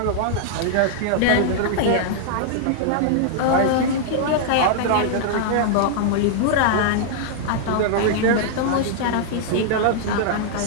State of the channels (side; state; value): both; different; correlation -0.01